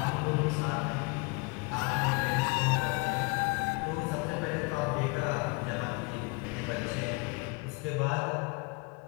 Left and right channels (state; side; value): quieter; right; 28.9 dB